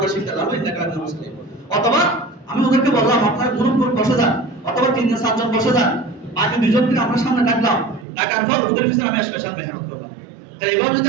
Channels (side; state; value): left; drops out; at 8.1 s